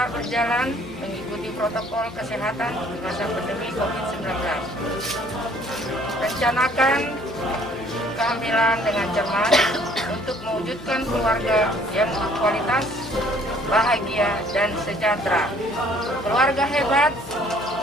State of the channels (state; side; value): noise; left; hum, 17 dB below the sound